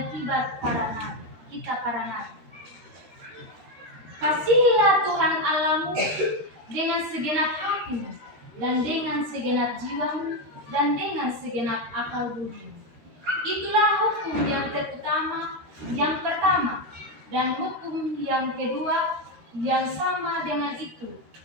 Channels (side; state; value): left; late; 13 ms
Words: kitab para nabi. Kasihilah Tuhan Allahmu dengan segenap hatimu dan dengan segenap jiwamu dan dengan segenap akal budimu. Itulah hukum yang terutama, yang pertama, dan hukum yang kedua yang sama dengan itu